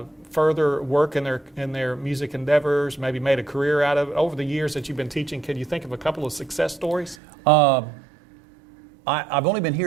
further work in their music endeavors, maybe made a career out of it? Over the years that you've been teaching, can you think of a couple of success stories? I've only been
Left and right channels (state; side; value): drops out; left; at 7.2 s